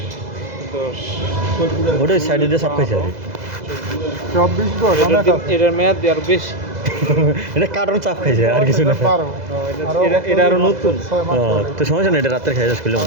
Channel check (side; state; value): left; late; 2.0 ms